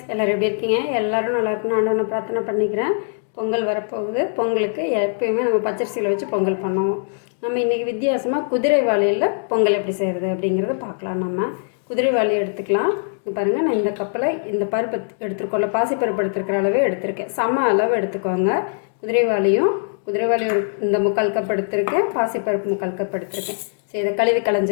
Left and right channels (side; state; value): right; silent; digital silence